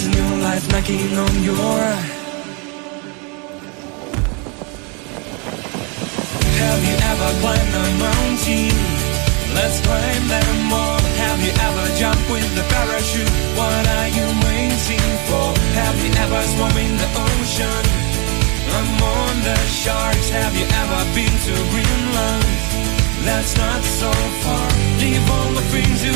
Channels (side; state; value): left; quieter; 32.5 dB